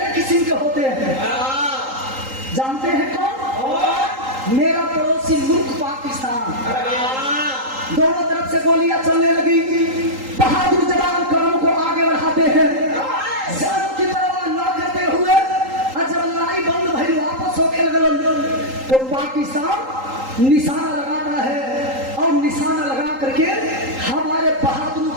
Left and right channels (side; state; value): left; late; 3.8 ms